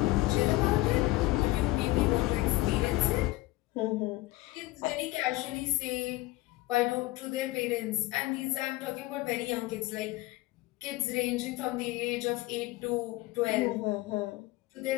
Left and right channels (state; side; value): quieter; right; 19.2 dB